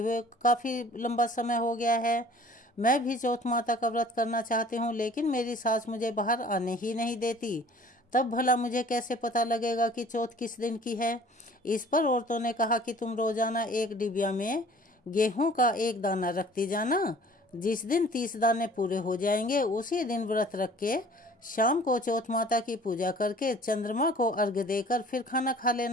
काफी लंबा समय हो गया है, मैं भी चौथ माता का व्रत करना चाहती हूँ, लेकिन मेरी सास मुझे बाहर आने ही नहीं देती, तब भला मुझे कैसे पता लगेगा कि चौथ किस दिन की है। इस पर औरतों ने कहा कि तुम रोजाना एक डिबिया में गेहूं का एक दाना रखती जाना, जिस दिन 30 दाने पूरे हो जाएंगे उसी दिन व्रत रख के शाम को चौथ माता की पूजा करके चंद्रमा को अर्घ्य देकर फिर खाना खा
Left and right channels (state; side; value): normal; both; correlation 0.50